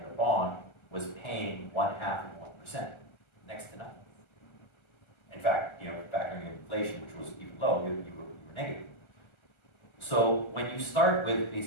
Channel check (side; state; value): right; late; 1.3 ms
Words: bond was paying 0.5%, next to nothing. In fact, factoring in inflation, which was even low, you were negative. So when you start with